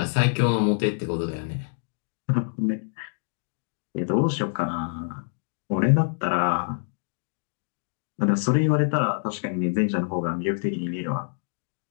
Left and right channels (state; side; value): silent; right; digital silence